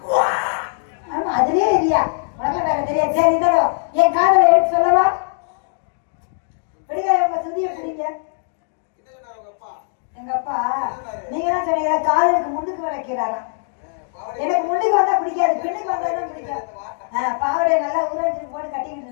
ஆமா அதுலயே இல்லையா உனக்கு வேற தெரியாது. சரி இருந்தாலும் என் காதல எடுத்து சொல்லவா? படிக்காத உங்க சுதிய பிடிங்க. எங்க அப்பா நீங்க தான் சொன்னீங்க காதலுக்கு முன்னுக்கு வைக்கிறாரா. எனக்கு முன்னுக்கு வந்தா பிடிக்காது, பின்னுக்கு வந்தாதான் பிடிக்கும். பாவடை நல்லா ஊராட்சி போட்டு கட்டிக்கிட்டு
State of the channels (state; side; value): silent; right; digital silence